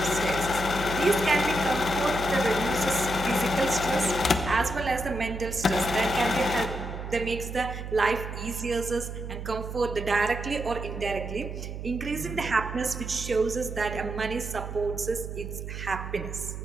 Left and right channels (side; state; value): right; noise; hum, 7 dB below the sound